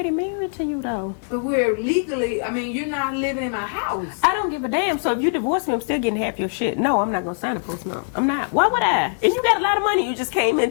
married to you though. But we're legally, you're not living in my house. I don't give a damn. So if you divorce me, I'm still getting half your shit. No, I'm not gonna sign a postnup. I'm not. Why would I? And you got a lot of money. You just came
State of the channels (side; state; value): right; silent; 64 dB below the other